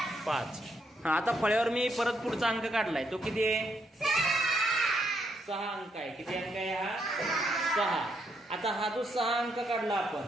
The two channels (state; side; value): normal; both; correlation 0.76